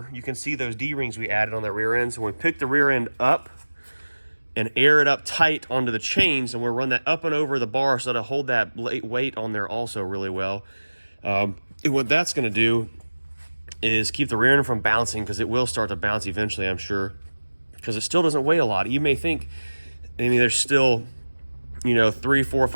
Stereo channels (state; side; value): inverted; both; correlation -1.00